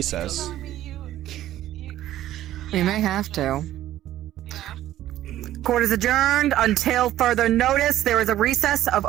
Tell me you We may have to. yeah. Court is adjourned until further notice. There is a recess of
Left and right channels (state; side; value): quieter; left; 13.4 dB